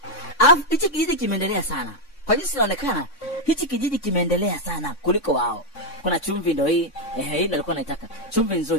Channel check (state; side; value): late; right; 3.6 ms